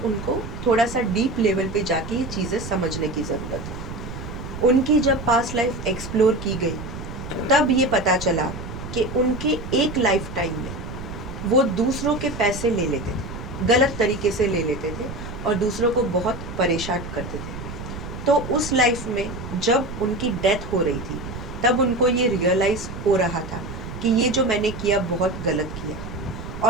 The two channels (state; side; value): noise; right; rumble, 9 dB below the sound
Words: थोड़ा सा डीप लेवल पे जाके ये चीज़ें समझने की ज़रूरत है। उनकी जब पास्ट लाइफ एक्सप्लोर की गई तब ये पता चला कि उनके एक लाइफ टाइम में वो दूसरों के पैसे ले लेते थे, गलत तरीके से ले लेते थे और दूसरों को बहुत परेशान करते थे। तो उस लाइफ में जब उनकी डेथ हो रही थी तब उनको ये रियलाइज़ हो रहा था कि ये जो मैंने किया बहुत गलत किया,